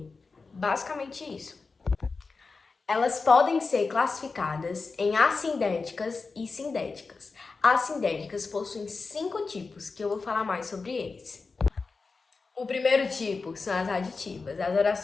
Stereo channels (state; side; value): quieter; right; 4.3 dB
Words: Basicamente isso. Elas podem ser classificadas em assindéticas e sindéticas. As sindéticas possuem 5 tipos, que eu vou falar mais sobre eles. O primeiro tipo são as aditivas. As